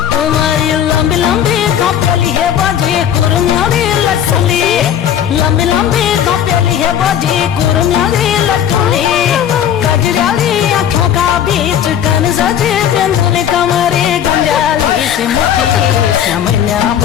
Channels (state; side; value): quieter; right; 9.7 dB